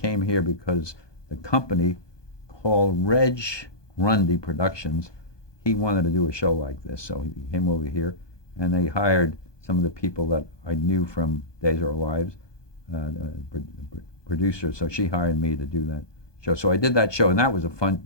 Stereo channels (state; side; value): late; right; 1.2 ms